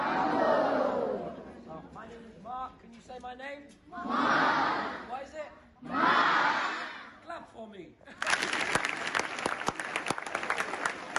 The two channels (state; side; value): identical; both; correlation 1.00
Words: My name is Mark. Can you say my name? Mark. What is it? Mark. Clap for me.